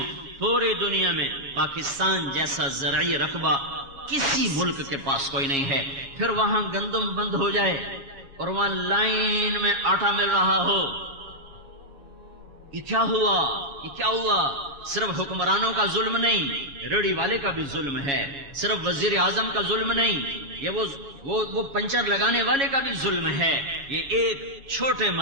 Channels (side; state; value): left; late; 7.2 ms